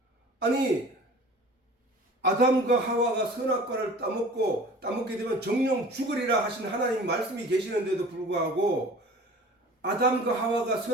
아니, 아담과 하와가 선악과를 따먹게 되면 정령 죽으리라 하신 하나님 말씀이 계시는데도 불구하고 아담과 하와가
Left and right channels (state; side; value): normal; both; correlation 0.43